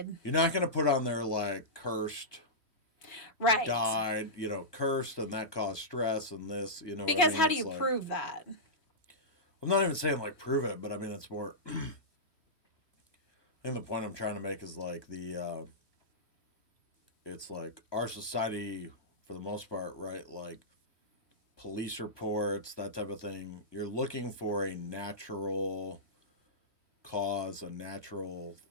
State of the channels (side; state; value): right; late; 3.1 ms